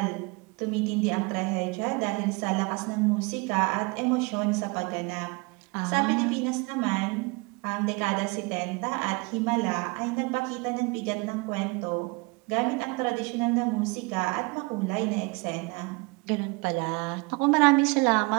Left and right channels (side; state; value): left; quieter; 27.9 dB